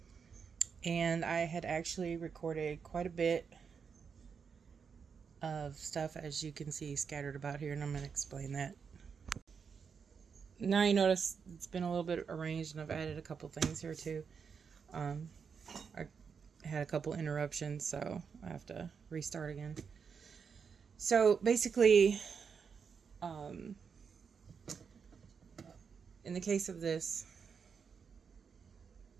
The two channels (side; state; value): left; quieter; 6.2 dB